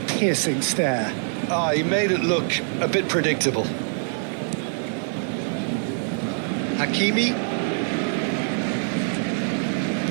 piercing stare. He made it look a bit predictable. Hakimi.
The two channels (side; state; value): left; silent; digital silence